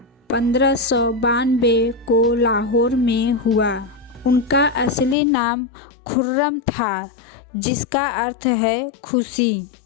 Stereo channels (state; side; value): drops out; right; at 5.2 s